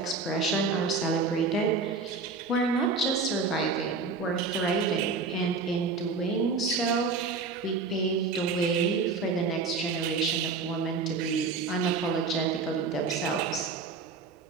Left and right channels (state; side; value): quieter; left; 4.5 dB